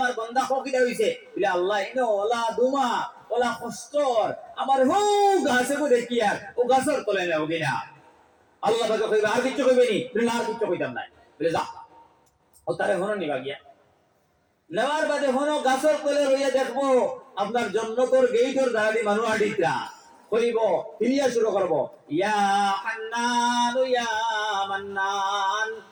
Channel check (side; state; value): both; identical; correlation 1.00